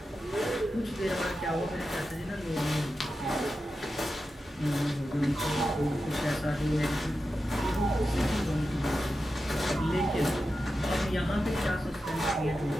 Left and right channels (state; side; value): normal; both; correlation 0.91